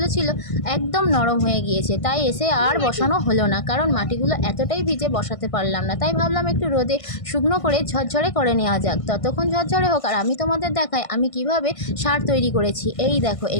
ছিল একদম নরম হয়ে গিয়েছে, তাই এসে আর বসানো হলো না, কারণ মাটিগুলো এতটাই ভিজে বসাতে পারলাম না। তাই ভাবলাম একটু রোদে শুকনো করে ঝরঝরে করে নেওয়া যাক, ততক্ষণ ঝরঝরে হোক আর আমি তোমাদের দেখাই আমি কিভাবে সার তৈরি করেছি। এই দেখো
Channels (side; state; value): right; late; 1.5 ms